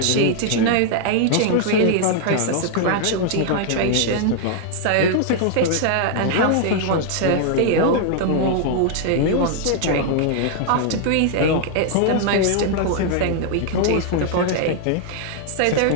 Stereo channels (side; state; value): both; different; correlation 0.00